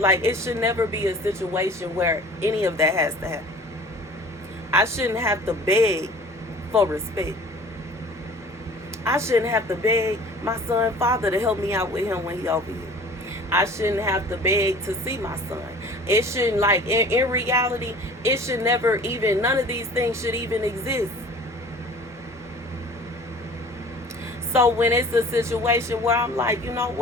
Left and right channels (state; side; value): normal; both; correlation 0.46